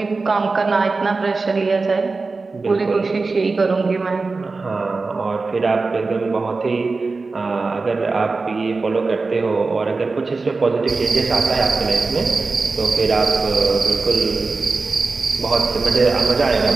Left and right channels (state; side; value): quieter; left; 3.9 dB